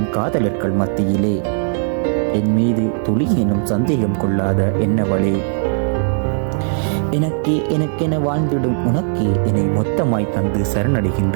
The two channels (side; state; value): left; silent; 61 dB below the other